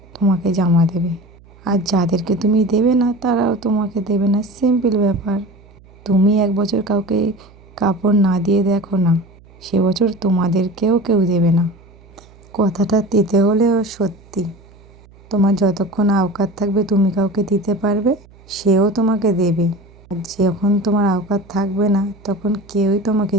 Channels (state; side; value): noise; right; hum, 25 dB below the sound